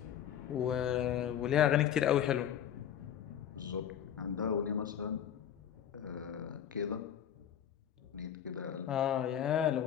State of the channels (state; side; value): quieter; right; 9.7 dB